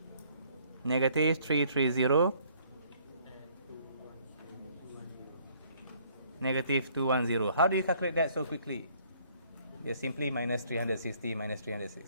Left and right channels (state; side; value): inverted; both; correlation -0.62